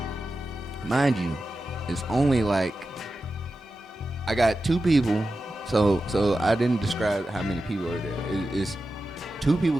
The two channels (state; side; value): normal; both; correlation 0.92